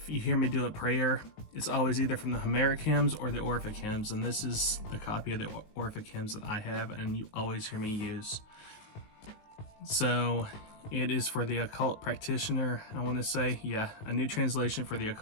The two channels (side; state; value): right; late; 19 ms